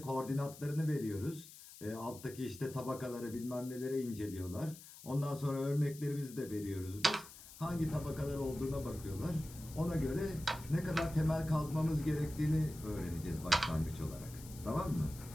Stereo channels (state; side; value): noise; left; hiss, 17 dB below the sound